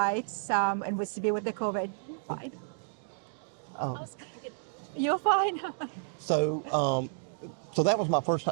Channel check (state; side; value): silent; left; digital silence